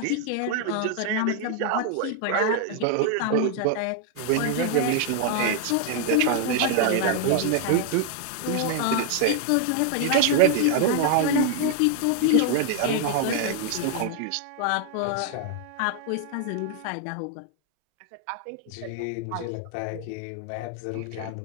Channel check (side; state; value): both; different; correlation 0.00